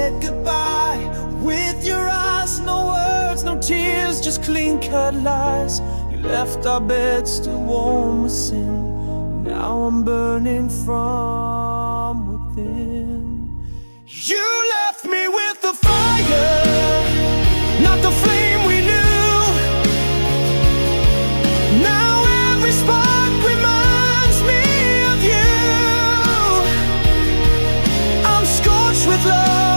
goodbye with your eyes, no words, no tears, just clean-cut lies. You left our bed still warm with sin. Now I'm burning from within. You left me with the fire, not the flame we knew. Now every spark reminds me of you. I'm scorched with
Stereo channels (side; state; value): both; inverted; correlation -1.00